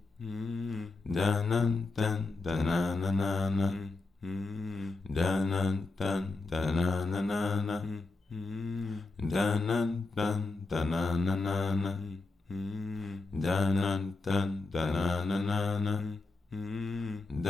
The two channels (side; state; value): right; quieter; 3.6 dB